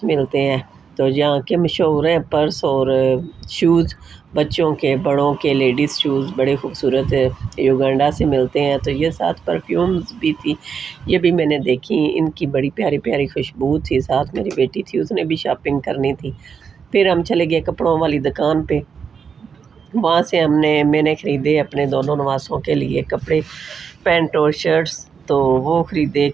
मिलते हैं। तो यहाँ के मशहूर हैं पर्स और शूज़, बच्चों के, बड़ों के, लेडीज़ शूज़ बड़े खूबसूरत युगांडा से मिलते हैं। तो ये साथ परफ्यूम्स भी थी, ये भी मैंने देखी, इनकी बड़ी प्यारी प्यारी खुशबू थी। साथ मेरी बेटी थी, उसने भी शॉपिंग करनी थी। फिर हम चले गए कपड़ों वाली दुकान पे। वहाँ से मैंने ख़रीदे अपने दोनों नवासों के लिए कपड़े, पैंट और शर्ट्स। तो वो ख़रीदे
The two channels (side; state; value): left; quieter; 6.4 dB